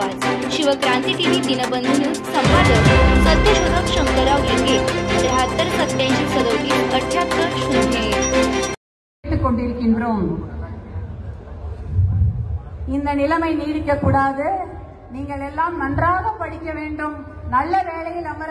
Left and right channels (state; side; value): identical; both; correlation 1.00